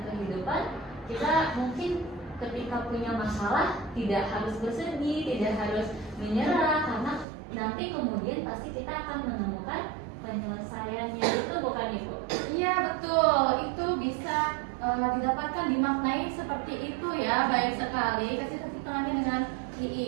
kehidupan, kita mungkin ketika punya masalah tidak harus bersedih, tidak harus menyerah, karena nanti kemudian pasti kita akan menemukan penyelesaiannya. Itu bukan Ibu? Iya betul, itu bisa didapatkan, dimaknai seperti itu ya. Baik sekali, kasih tepuk tangannya dengan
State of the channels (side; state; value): left; drops out; at 7.2 s